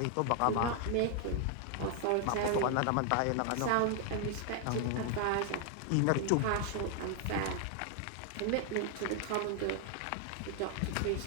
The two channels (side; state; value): both; different; correlation 0.00